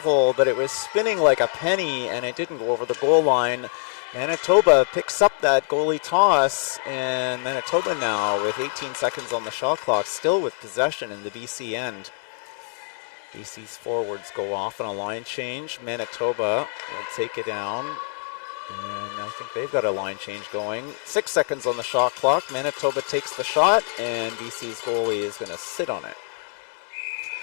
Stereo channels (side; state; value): right; silent; digital silence